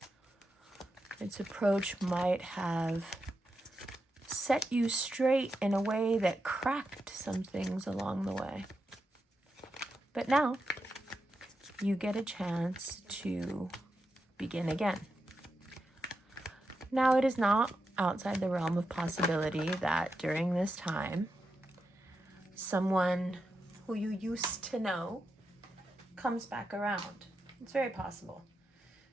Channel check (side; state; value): both; normal; correlation 0.87